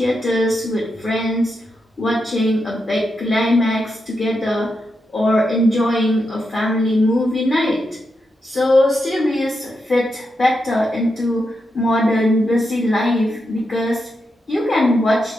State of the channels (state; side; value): normal; both; correlation 0.85